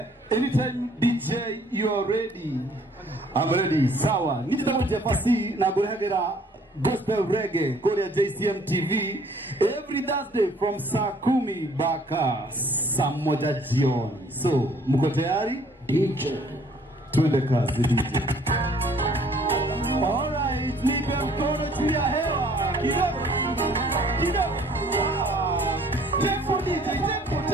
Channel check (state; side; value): normal; both; correlation 0.59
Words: Anytime DJ you are ready. I'm ready. Sawa. Nijitago Jefasi na gurehagera gospel reggae Korea JCM TV every Thursday from saa 10 mpaka saa 1 jioni. So, mko tayari? DJ. Twende kazi DJ. Alright, nipe mkono juu ya hewa. Kidogo. Tempo DJ,